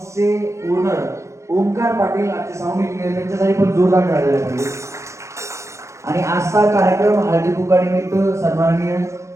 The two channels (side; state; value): left; late; 0.14 ms